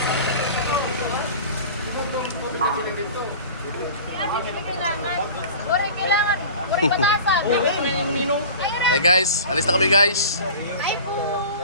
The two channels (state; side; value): inverted; both; correlation -0.38